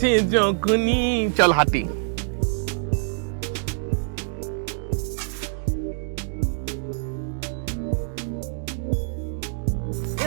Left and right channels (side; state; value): left; silent; digital silence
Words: যখনই। চল হাঁটি।